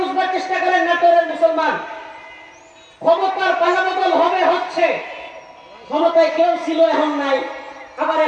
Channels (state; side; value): identical; both; correlation 1.00